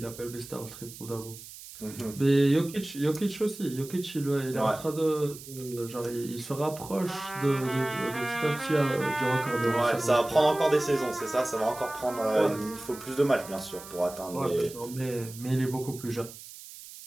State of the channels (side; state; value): right; noise; hiss, 15 dB below the sound